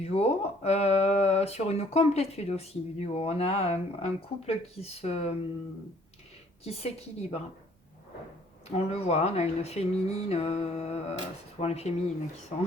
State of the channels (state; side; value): normal; both; correlation 0.60